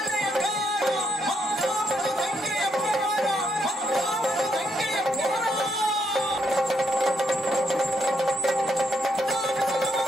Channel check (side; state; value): both; normal; correlation 0.76